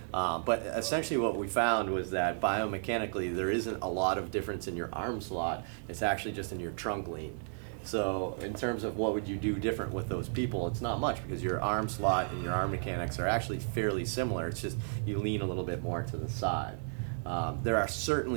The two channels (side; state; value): left; silent; digital silence